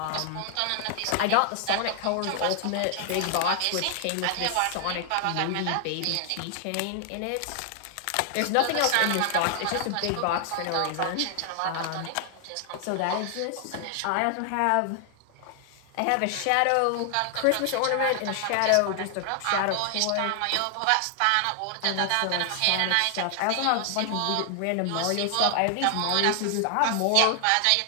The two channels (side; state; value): both; different; correlation 0.00